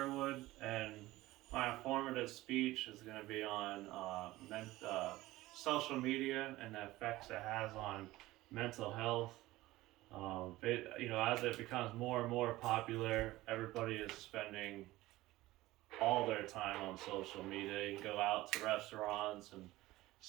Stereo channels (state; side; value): quieter; left; 17.8 dB